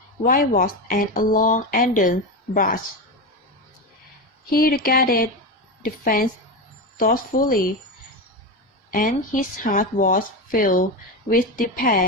whitewash and a long ended brush. He regarded the fence thoughtfully, and his heart was filled with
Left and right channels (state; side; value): normal; both; correlation 0.17